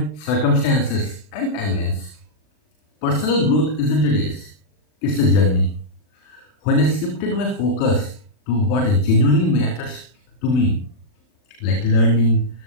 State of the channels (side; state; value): right; late; 40 ms